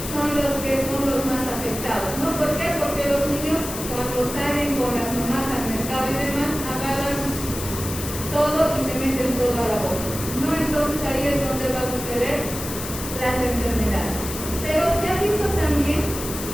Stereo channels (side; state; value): left; noise; hiss, 8 dB below the sound